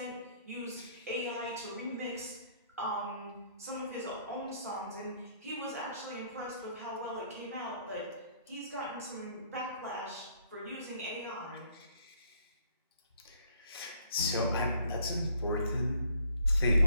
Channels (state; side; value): inverted; both; correlation -0.65